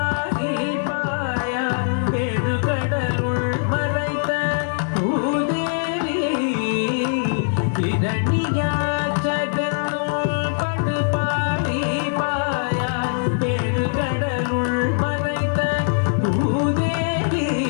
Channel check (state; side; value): silent; right; digital silence